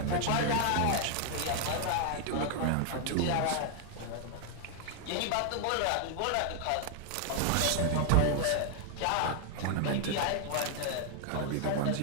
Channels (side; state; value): both; different; correlation 0.00